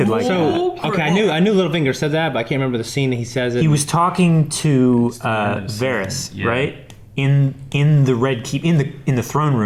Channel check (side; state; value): both; identical; correlation 1.00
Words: like that. So okay, I knew Littlefinger said that, but I can't remember the scene that he says it. He was talking to Varys, Yeah. right? In the Red Keep, in the throne